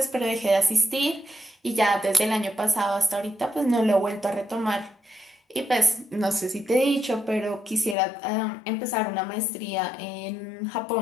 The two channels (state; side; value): drops out; right; at 8.0 s